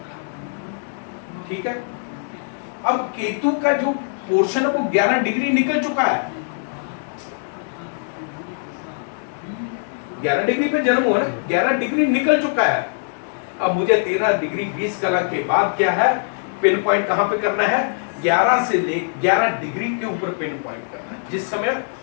का, ठीक है। अब केतु का जो पोर्शन है वो 11 डिग्री निकल चुका है। 11 डिग्री पे जन्म हुआ ना, 11 डिग्री निकल चुका है। अब मुझे 13 डिग्री 20 कलर के बाद क्या है, पिन पॉइंट कहां पे करना है? 11 से ले 11 डिग्री के ऊपर पिन पॉइंट करना है। जिस समय,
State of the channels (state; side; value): silent; right; digital silence